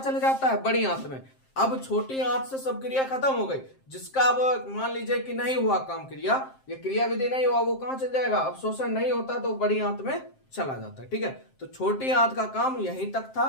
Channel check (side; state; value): right; late; 7.6 ms